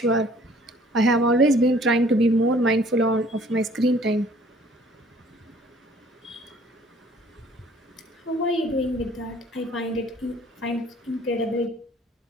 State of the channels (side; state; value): both; normal; correlation 0.56